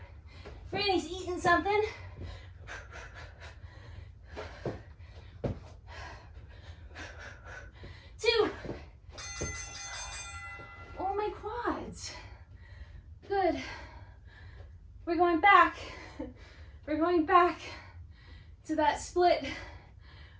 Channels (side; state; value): both; identical; correlation 1.00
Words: Franny's eating something. Two. Oh, my quads. Good. We're going back. We're going back to that split